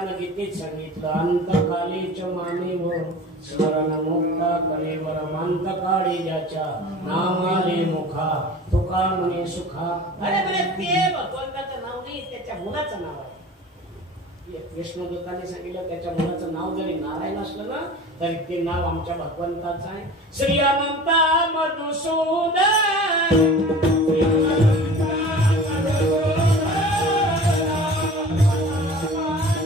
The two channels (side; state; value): both; normal; correlation 0.40